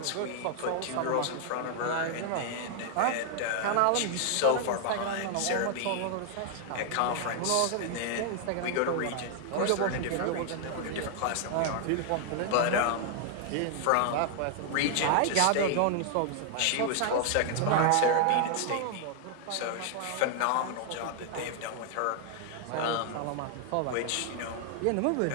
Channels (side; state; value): both; different; correlation 0.00